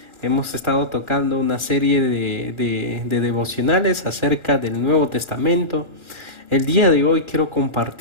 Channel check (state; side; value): late; right; 1.4 ms